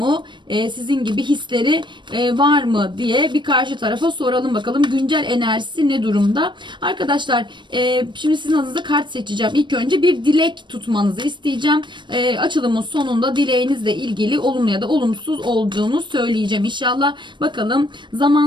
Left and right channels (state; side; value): late; left; 0.22 ms